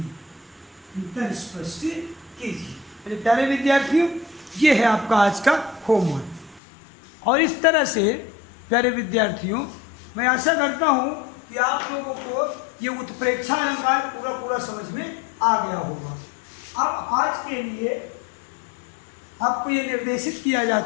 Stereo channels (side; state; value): right; drops out; at 6.6 s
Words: अंतर स्पष्ट कीजिए। मेरे प्यारे विद्यार्थियों, ये है आपका आज का होमवर्क। और इस तरह से प्यारे विद्यार्थियों, मैं आशा करता हूँ कि आप लोगों को ये उत्प्रेक्षा अलंकार पूरा समझ में आ गया होगा। अब आज के लिए आपको ये निर्देशित किया